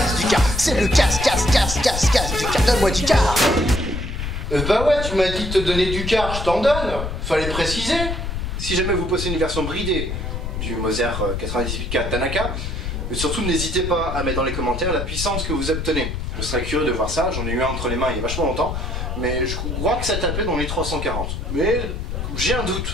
du car, c'est le casse du car, donne-moi du car. Bah ouais, tu m'as dit de te donner du car, je t'en donne. Fallait préciser. Si jamais vous possédez une version bridée du Moser 98K Tanaka, surtout n'hésitez pas à mettre dans les commentaires la puissance que vous obtenez. Je serais curieux de voir ça, j'en ai eu un entre les mains il y a vachement longtemps, mais je crois que ça tapait dans les 340. Mais j'ai un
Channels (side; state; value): left; noise; rumble, 4 dB below the sound